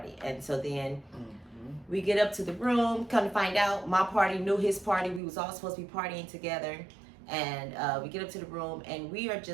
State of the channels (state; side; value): drops out; left; at 5.2 s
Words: And so then we get up to the room, come to find out my party knew his party. We was all supposed to be partying together. And we get up to the room, and we are